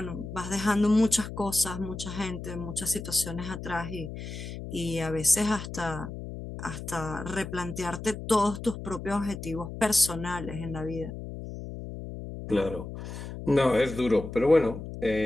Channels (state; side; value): noise; left; hum, 9 dB below the sound